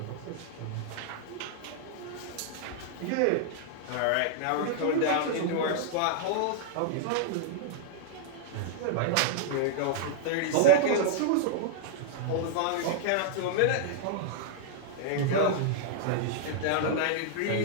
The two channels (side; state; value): both; different; correlation -0.01